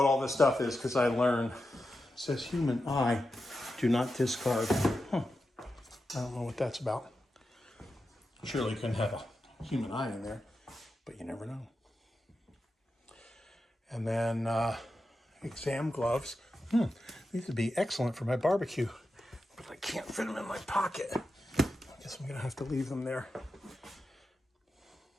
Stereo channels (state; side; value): normal; both; correlation 0.90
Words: all this stuff is, because I learned. It says human eye, do not discard. I don't know what that's about. Surely you couldn't have a human eye in there, but you never know. And then exam gloves. These would be excellent for my barbecue, but I can't fit them in my pocket. I guess I'm gonna have to leave them there.